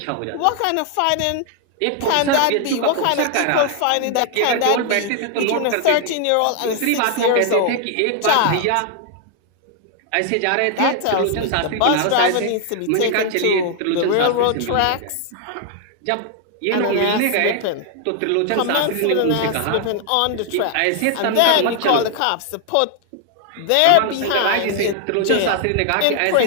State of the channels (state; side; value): different; both; correlation 0.00